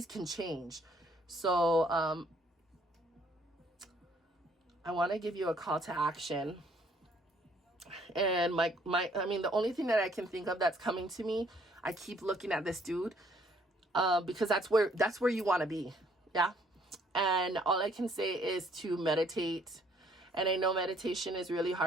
can change. So I want to give you a call to action. And I mean, the only thing that I can think of that's coming to me, I keep looking at this dude, because that's where you want to be. Yeah. And all I can say is to meditate And I know meditation is really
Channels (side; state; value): both; normal; correlation 0.64